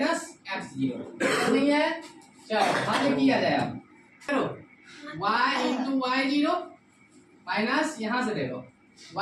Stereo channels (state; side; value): identical; both; correlation 1.00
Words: x0 नहीं है। चलो हल किया जाए, अब चलो y इंटू y0 माइनस यहाँ से देखो